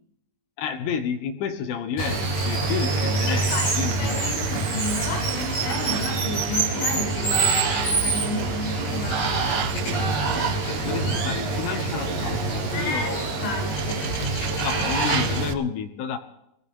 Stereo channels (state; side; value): late; right; 20 ms